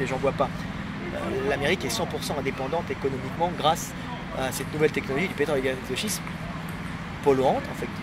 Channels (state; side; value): identical; both; correlation 1.00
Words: les gens ne voient pas. L'Amérique est 100% indépendante économiquement grâce à cette nouvelle technologie du pétrole et gaz de schiste, polluante